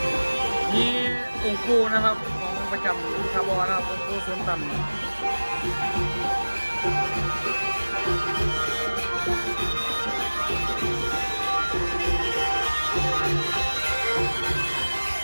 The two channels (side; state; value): both; inverted; correlation -1.00